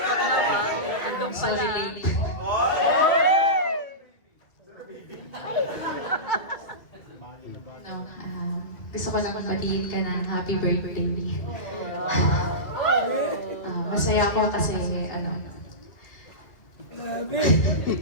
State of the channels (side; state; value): right; late; 2.0 ms